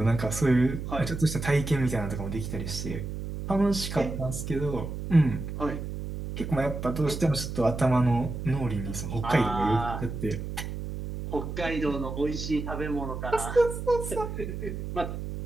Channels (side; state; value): right; noise; hum, 6 dB below the sound